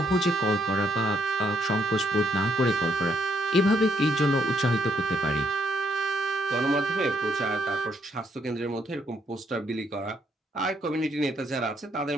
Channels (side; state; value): both; normal; correlation 0.73